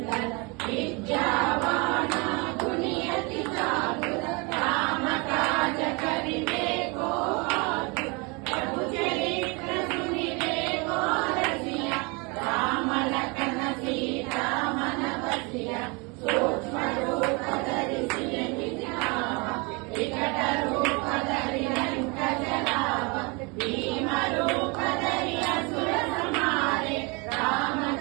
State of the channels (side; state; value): left; quieter; 29.4 dB